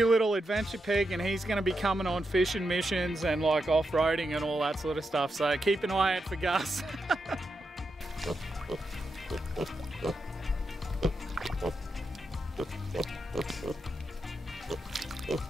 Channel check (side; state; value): both; normal; correlation 0.86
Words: little adventure pig, and he's going to be coming on fishing missions and like off-roading and all that sort of stuff. So keep an eye out for Gus.